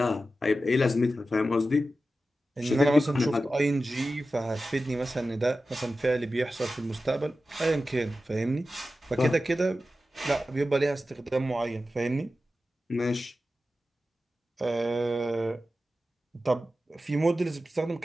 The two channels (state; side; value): normal; both; correlation 0.93